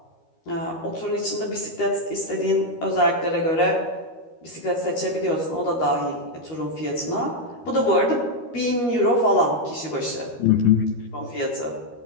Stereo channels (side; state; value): right; late; 13 ms